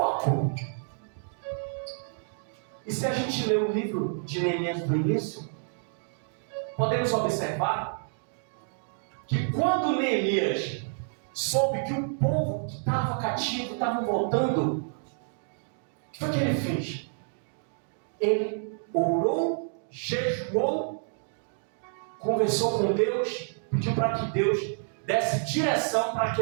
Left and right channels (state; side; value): silent; left; digital silence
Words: E se a gente ler o livro de Neemias do início, podemos observar que quando Neemias soube que o povo que estava cativo estava voltando, o que foi que ele fez? Ele orou, jejuou, conversou com Deus, pediu para que Deus desse direção para que